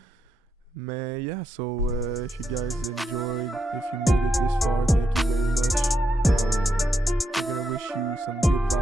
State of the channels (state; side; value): normal; both; correlation 0.82